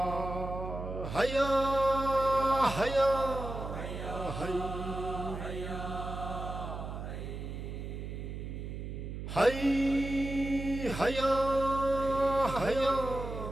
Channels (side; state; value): right; noise; hum, 7 dB below the sound